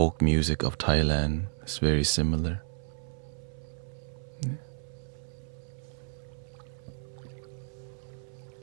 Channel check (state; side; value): silent; left; 57 dB below the other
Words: music of Thailand is very similar. Yeah.